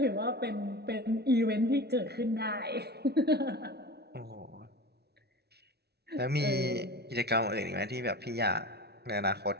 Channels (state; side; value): late; left; 0.48 ms